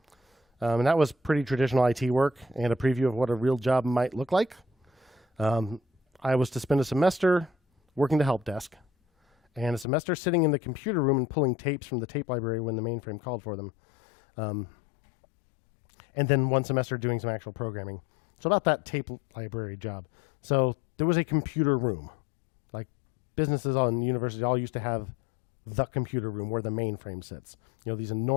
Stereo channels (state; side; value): drops out; right; at 9.9 s